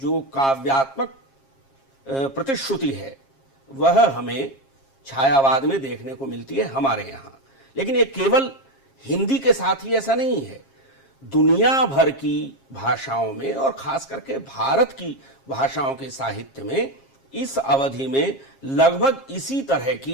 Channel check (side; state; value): right; late; 7.4 ms